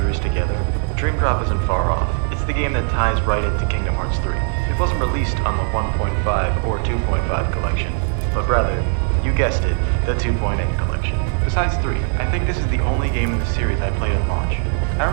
together? Dream Drop isn't far off. It's the game that ties right into Kingdom Hearts 3. It wasn't released on the 1.5 or 2.5 collection, but rather, you guessed it, the 2.8 collection. Besides 3, I think this is the only game in the series I played at launch. I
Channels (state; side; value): silent; left; 56 dB below the other